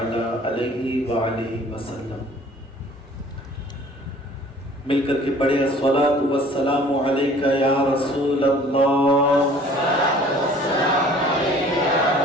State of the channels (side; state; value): both; normal; correlation 0.51